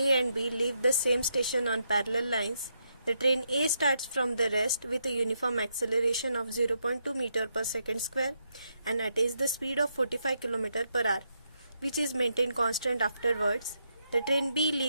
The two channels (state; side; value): inverted; both; correlation -0.80